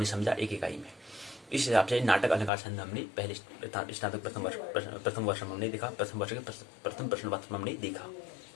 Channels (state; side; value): drops out; right; at 2.5 s